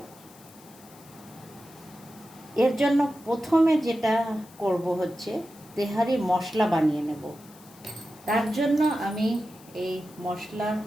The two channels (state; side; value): noise; left; hiss, 23 dB below the sound